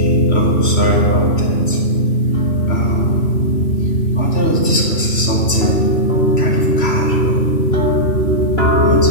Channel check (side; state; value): right; late; 3.1 ms